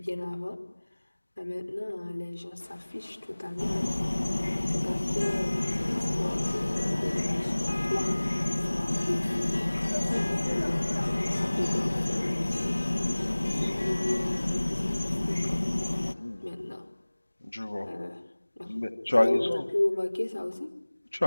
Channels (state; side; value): inverted; both; correlation -1.00